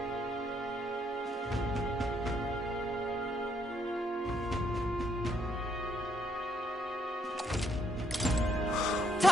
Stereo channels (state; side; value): normal; both; correlation 0.73